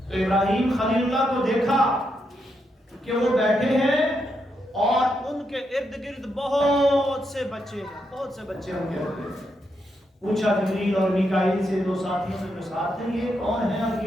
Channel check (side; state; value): both; normal; correlation 0.81